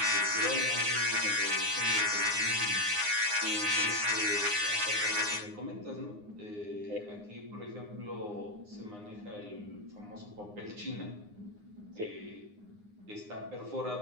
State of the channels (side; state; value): left; late; 9.7 ms